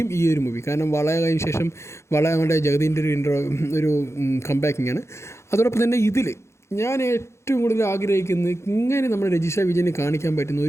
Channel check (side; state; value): right; late; 0.13 ms